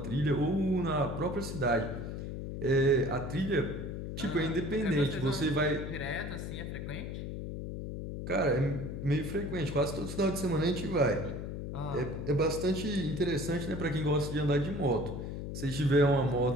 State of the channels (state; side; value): noise; left; hum, 6 dB below the sound